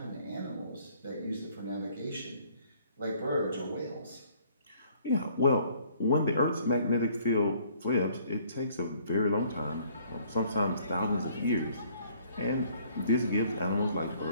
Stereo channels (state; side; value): inverted; both; correlation -0.60